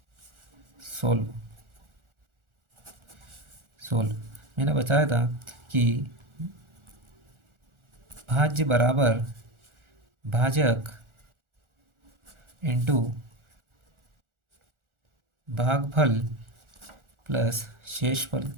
सोल्व सोल्व मैंने बताया था कि भाज्य बराबर भाजक इंटू भागफल प्लस शेषफल,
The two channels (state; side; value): late; left; 1.4 ms